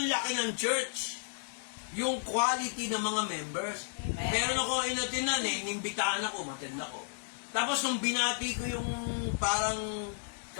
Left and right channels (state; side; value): silent; right; digital silence